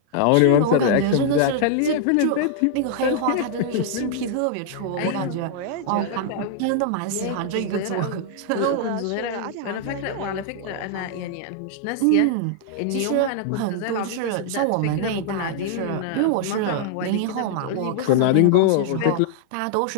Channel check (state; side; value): different; both; correlation -0.01